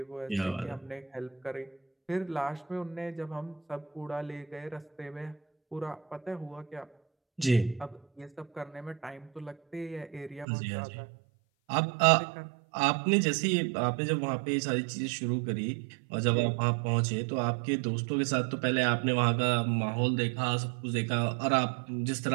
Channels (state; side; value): drops out; left; at 10.5 s